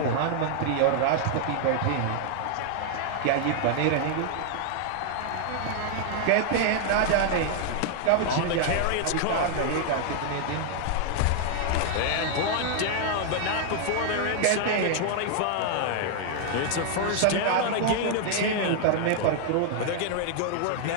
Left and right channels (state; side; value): different; both; correlation 0.00